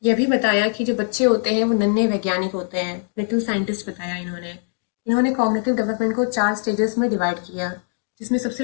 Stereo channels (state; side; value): silent; right; 60 dB below the other